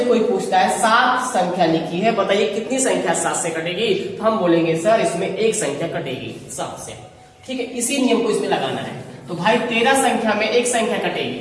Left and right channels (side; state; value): both; identical; correlation 1.00